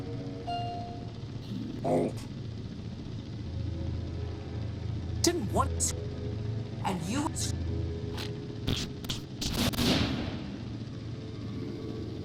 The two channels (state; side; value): identical; both; correlation 1.00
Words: Oh. Didn't want... And you...